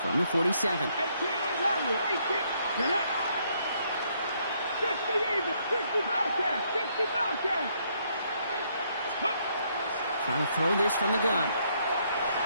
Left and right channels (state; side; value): inverted; both; correlation -0.71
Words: from the 47. 18 Randall. 18. 60 even. 60 Bobcat. 60 Bobcat. Trying to throw this from the gun.